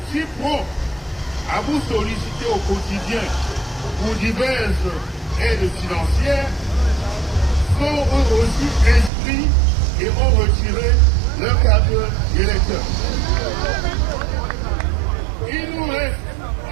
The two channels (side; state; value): left; drops out; at 9.1 s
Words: si prompts à vous solliciter au quotidien pour diverses aides financières, sont eux aussi inscrits et ont retiré leur carte d'électeur. Il nous reste